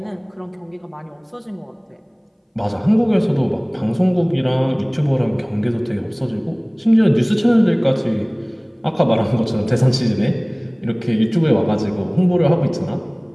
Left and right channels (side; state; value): both; identical; correlation 1.00